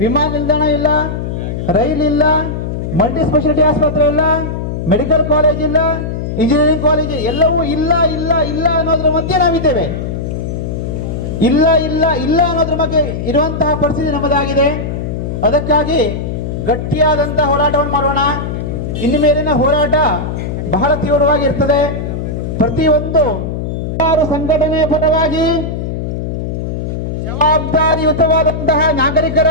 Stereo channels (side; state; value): left; noise; hum, 4 dB below the sound